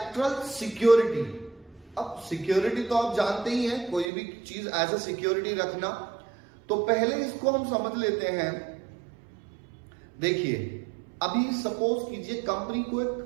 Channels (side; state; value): left; drops out; at 4.1 s